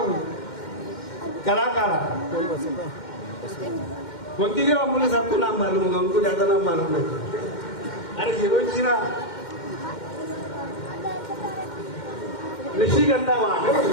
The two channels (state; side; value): late; right; 2.1 ms